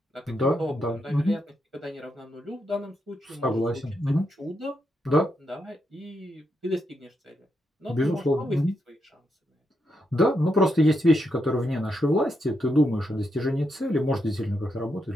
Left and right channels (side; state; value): both; normal; correlation 0.82